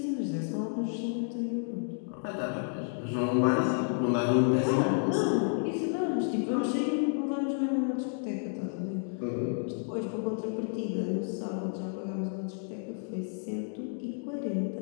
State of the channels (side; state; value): right; silent; 57 dB below the other